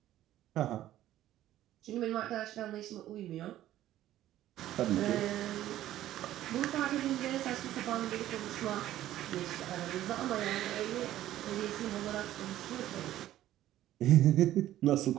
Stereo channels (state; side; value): quieter; left; 13.4 dB